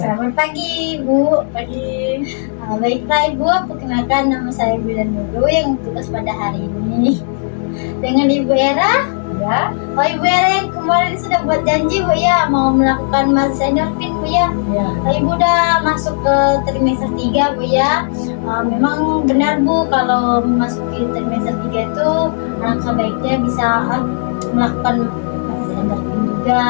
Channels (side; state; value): right; silent; digital silence